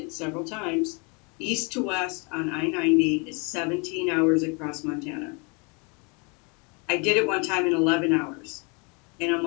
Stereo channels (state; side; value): quieter; right; 32.4 dB